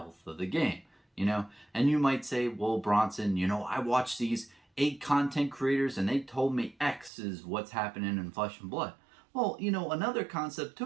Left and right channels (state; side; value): drops out; left; at 7.1 s